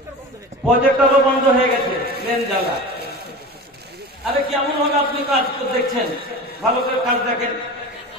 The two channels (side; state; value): both; normal; correlation 0.32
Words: প্রজেক্টরও বন্ধ হয়ে গেছে মেন জ্বালা আরে কেমন হবে আপনি কাজ দেখছেন ভালো করে কাজ দেখেন